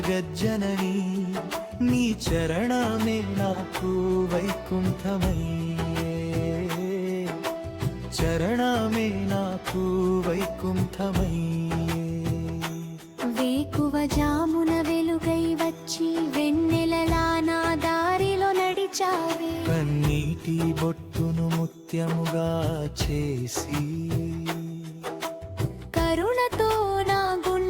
నీ చరణమే నాకు వైకుంఠమయ్యే. చరణమే నాకు వైకుంఠమయ్యే. వేకువ జామున వెలుగై వచ్చి వెన్నెలలా నా దారిలో నడిచావే. కన్నీటి బొట్టును ముత్యముగా చేసి కరుణతో నా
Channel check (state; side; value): identical; both; correlation 1.00